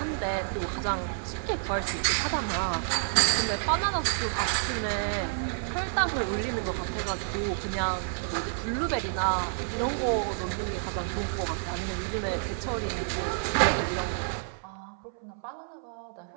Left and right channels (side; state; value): left; silent; 58 dB below the other